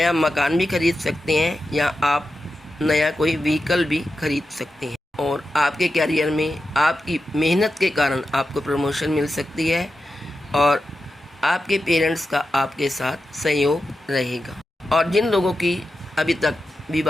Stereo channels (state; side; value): normal; both; correlation 0.90